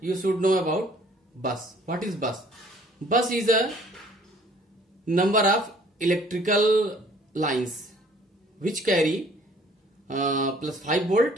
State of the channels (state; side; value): normal; both; correlation 0.56